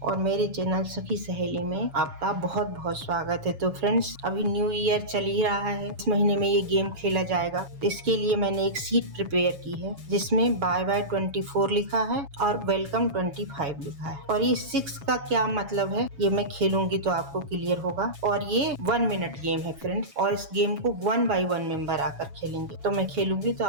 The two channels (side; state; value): left; late; 7.2 ms